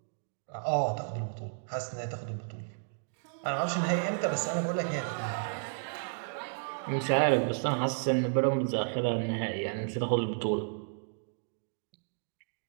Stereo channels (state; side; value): silent; left; digital silence